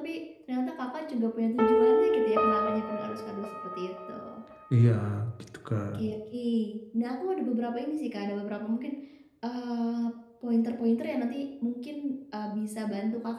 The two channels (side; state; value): both; identical; correlation 1.00